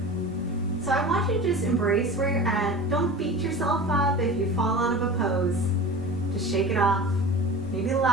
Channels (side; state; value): both; normal; correlation 0.34